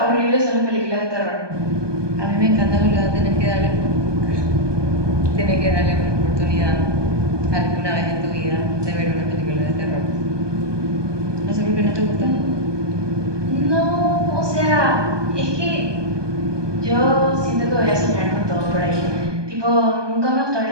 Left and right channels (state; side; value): late; left; 1.2 ms